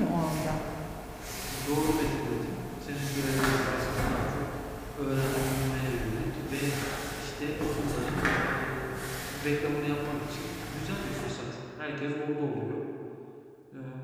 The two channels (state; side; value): identical; both; correlation 1.00